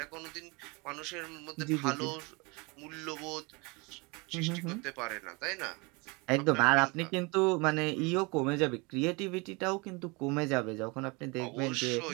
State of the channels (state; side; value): quieter; left; 28.0 dB